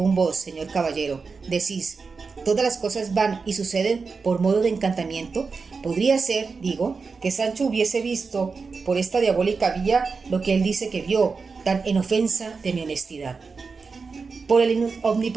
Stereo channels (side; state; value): left; quieter; 4.7 dB